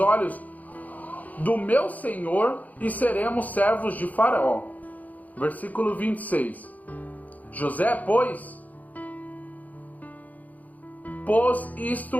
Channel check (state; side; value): late; right; 0.077 ms